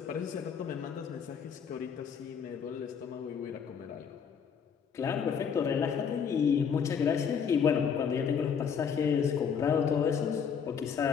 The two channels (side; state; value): right; quieter; 7.0 dB